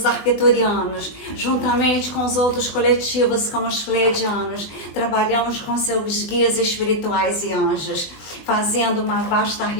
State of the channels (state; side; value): late; right; 20 ms